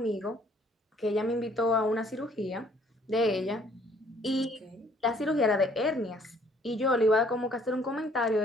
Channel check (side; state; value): both; normal; correlation 0.61